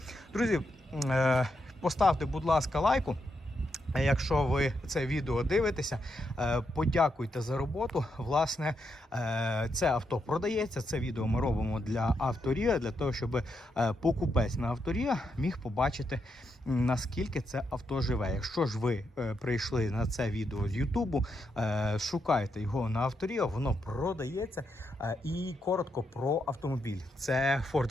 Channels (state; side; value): normal; both; correlation 0.82